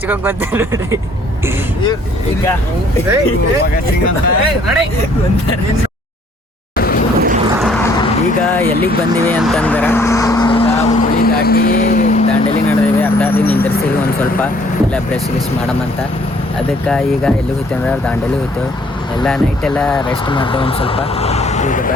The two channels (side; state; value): both; normal; correlation 0.61